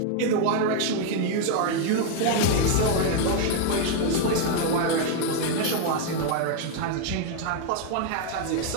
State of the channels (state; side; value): different; both; correlation 0.00